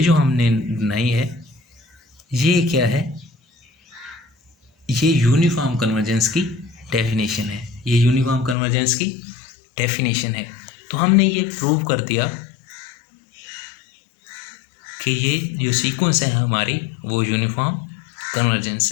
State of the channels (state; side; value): drops out; right; at 8.6 s